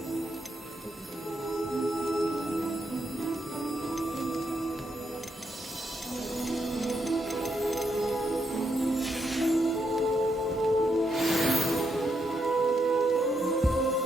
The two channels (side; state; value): both; normal; correlation 0.79